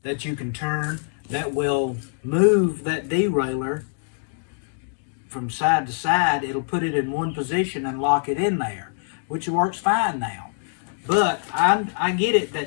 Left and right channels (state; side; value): silent; right; digital silence